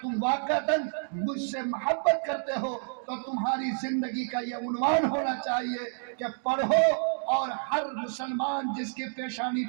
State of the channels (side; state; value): left; silent; digital silence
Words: تم واقعتاً مجھ سے محبت کرتے ہو تو تمہاری زندگی کا یہ عنوان ہونا چاہیے کہ پڑھو، اور ہر مسلمان جس کے پیشانی